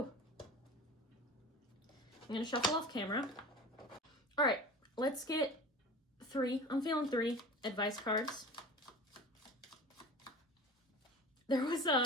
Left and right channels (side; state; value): both; normal; correlation 0.35